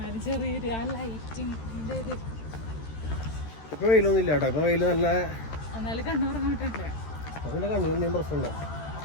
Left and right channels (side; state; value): right; late; 13 ms